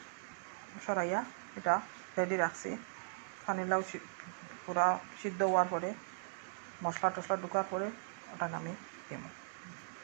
সরাইয়া এটা রেডি রাখছি। পানিলাও পুরা সিদ্ধ হওয়ার পরে মশলা টশলা ঢুকার পরে ওটা আমি দিব।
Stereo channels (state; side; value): silent; left; digital silence